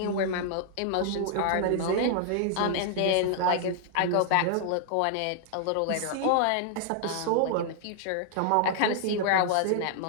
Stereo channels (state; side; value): different; both; correlation 0.00